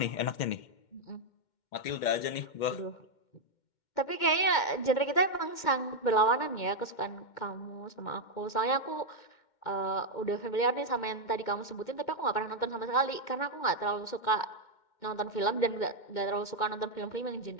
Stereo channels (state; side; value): late; right; 2.1 ms